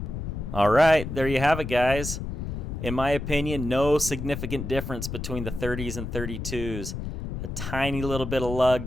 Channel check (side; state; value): left; noise; rumble, 6 dB below the sound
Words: All right, there you have it, guys. In my opinion, no significant difference between the 30s and 32s. A tiny little bit of